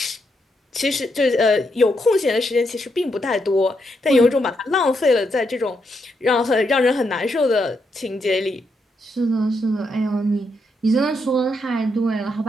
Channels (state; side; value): normal; both; correlation 0.80